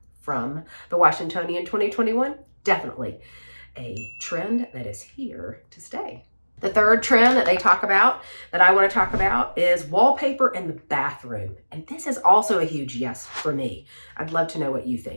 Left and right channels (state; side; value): inverted; both; correlation -1.00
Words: from the Washingtonian 2021, definitely a trend that is here to stay. The third trend that they talk about, that I want to talk about, is wallpaper in the bathroom. And this is also a huge yes for me. I'd love to know what you